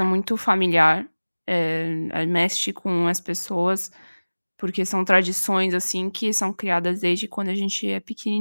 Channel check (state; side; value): inverted; both; correlation -1.00